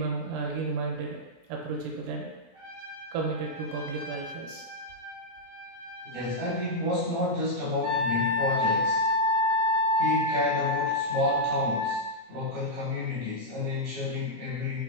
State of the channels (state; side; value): late; left; 17 ms